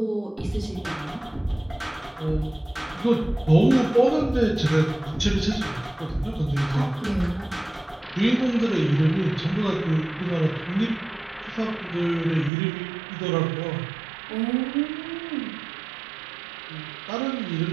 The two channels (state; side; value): drops out; left; at 12.5 s